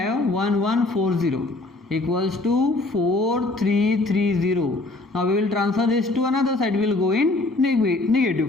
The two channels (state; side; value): quieter; right; 3.0 dB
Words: 1140 equals to 4330. Now we will transfer this to another side. We will go in